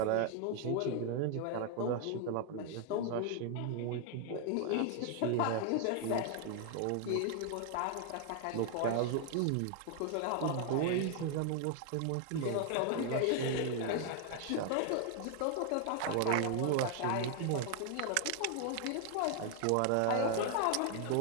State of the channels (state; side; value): different; both; correlation 0.00